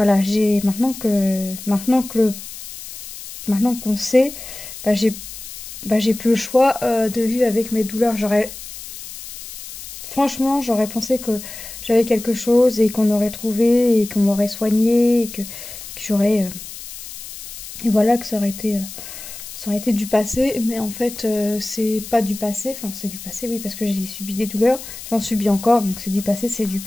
j'ai maintenant qu'on sait, bah, j'ai plus le choix de vivre avec mes douleurs. Franchement, j'aurais pensé que j'avais quelque chose et qu'on aurait trouvé et qu'on m'aurait soigné que j'aurais... et voilà, que ça aurait été du passé, mais en fait, c'est pas du passé. Enfin, c'est du passé, oui, parce que j'ai subi des douleurs. J'en subis encore, donc c'est du passé, c'est du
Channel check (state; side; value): noise; left; hiss, 12 dB below the sound